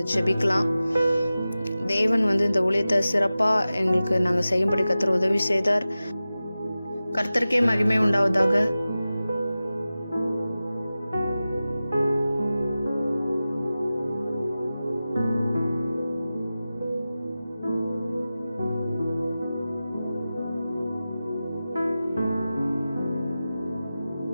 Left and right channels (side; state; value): both; inverted; correlation -0.95